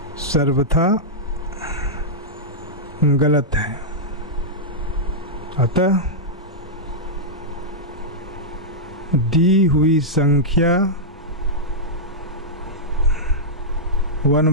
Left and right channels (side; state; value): both; normal; correlation -0.10